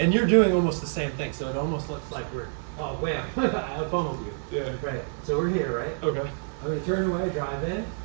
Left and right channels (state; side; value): silent; left; 60 dB below the other